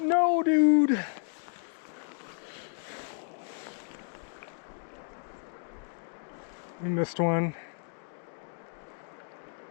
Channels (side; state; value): right; silent; 56 dB below the other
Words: dude. We missed one.